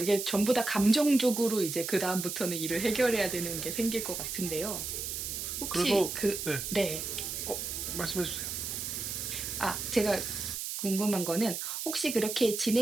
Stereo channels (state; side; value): noise; right; hiss, 4 dB below the sound